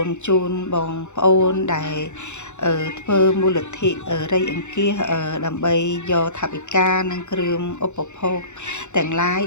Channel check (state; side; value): late; right; 0.83 ms